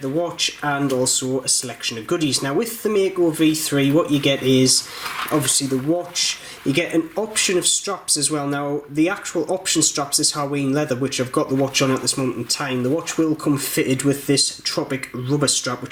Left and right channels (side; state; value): both; identical; correlation 1.00